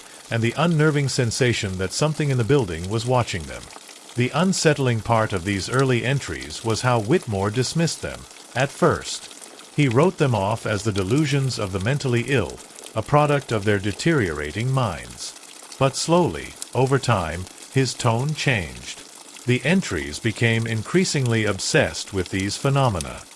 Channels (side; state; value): both; identical; correlation 1.00